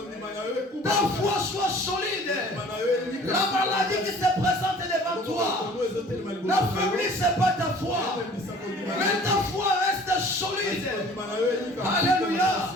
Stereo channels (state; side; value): normal; both; correlation 0.49